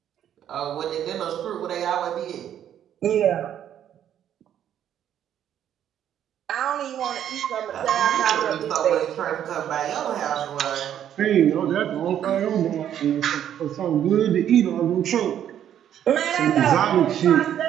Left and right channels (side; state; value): left; quieter; 10.2 dB